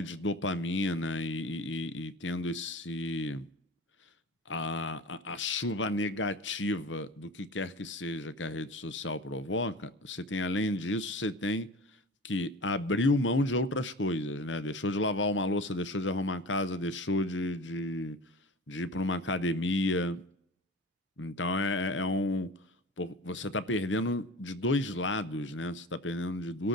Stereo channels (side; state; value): both; normal; correlation 0.35